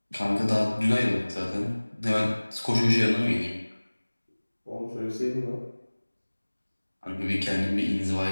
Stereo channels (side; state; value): both; inverted; correlation -1.00